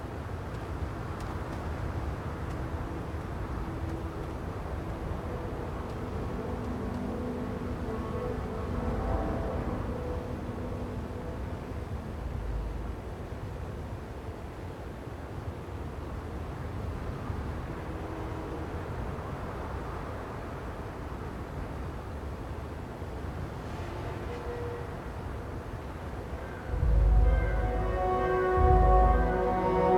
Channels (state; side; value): identical; both; correlation 1.00